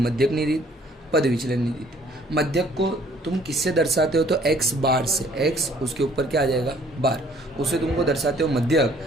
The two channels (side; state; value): both; normal; correlation 0.59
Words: रीत, पद विचलनी रीत। मध्यक को तुम किससे दर्शाते हो तो x बार से, x उसके ऊपर क्या आ जाएगा बार, उसे तुमको दर्शाते हो